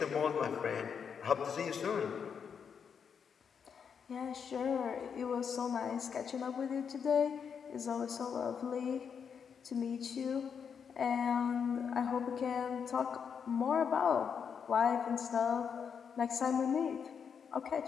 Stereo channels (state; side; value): quieter; right; 6.9 dB